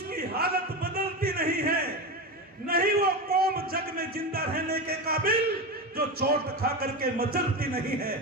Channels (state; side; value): normal; both; correlation 0.20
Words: हालत बदलती नहीं है, नहीं वो कौम जग में जिंदा रहने के काबिल जो चोट खा करके मचलती नहीं है,